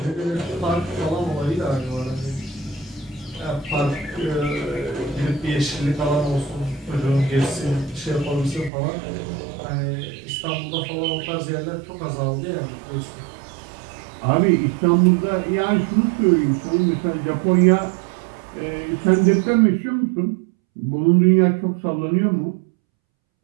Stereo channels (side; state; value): left; drops out; at 8.7 s